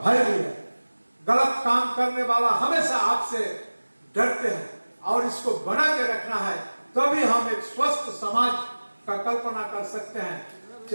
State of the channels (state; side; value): inverted; both; correlation -1.00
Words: भी है। गलत काम करने वाला हमेशा आपसे डरते हैं और इसको बना के रखना है, तभी हम एक स्वस्थ समाज का कल्पना कर सकते हैं।